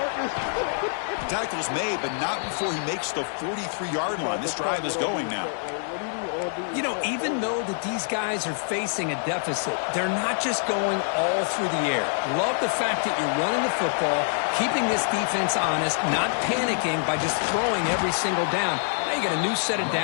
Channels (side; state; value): right; silent; digital silence